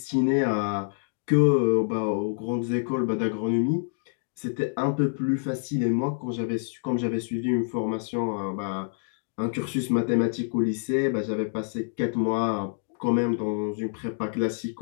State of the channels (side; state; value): right; silent; digital silence